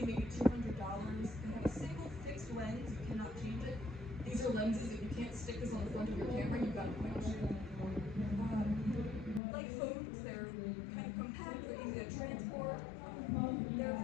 maybe $200. They have a single fixed lens. You cannot change it. These are lenses. If you can't stick this on the front of your camera, you've got to point and shoot. Like phones, they're kind of compact. They're easy to transport. They're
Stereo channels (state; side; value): drops out; right; at 9.4 s